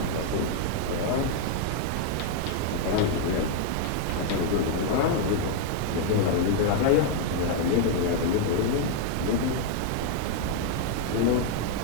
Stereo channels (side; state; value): both; different; correlation 0.00